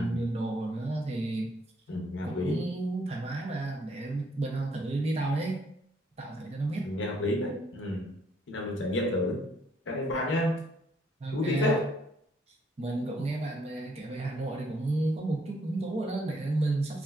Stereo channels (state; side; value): normal; both; correlation 0.68